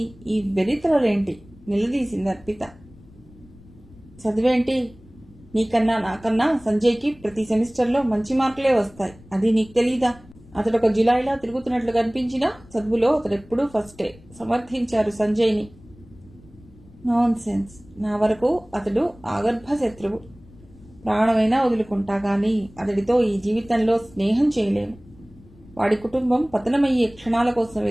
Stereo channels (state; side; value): noise; left; rumble, 24 dB below the sound